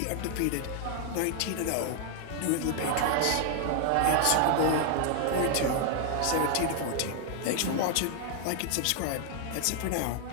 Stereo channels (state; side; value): different; both; correlation 0.00